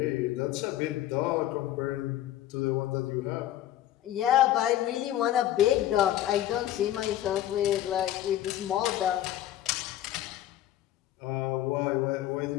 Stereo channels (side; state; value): right; quieter; 13.0 dB